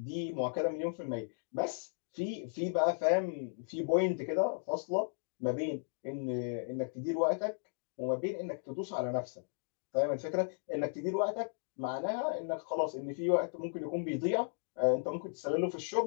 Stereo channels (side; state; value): right; silent; digital silence